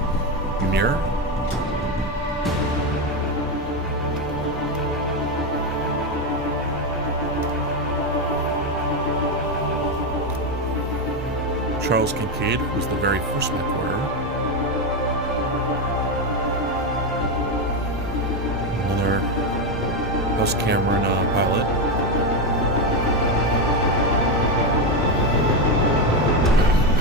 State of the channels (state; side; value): normal; both; correlation 0.10